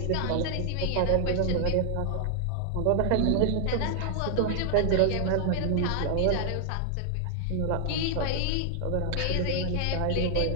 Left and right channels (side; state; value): both; different; correlation 0.00